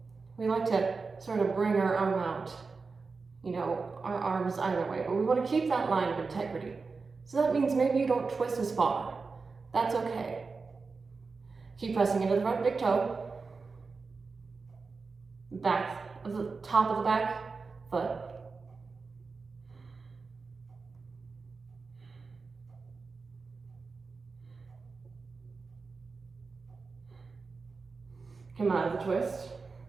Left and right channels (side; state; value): left; quieter; 4.4 dB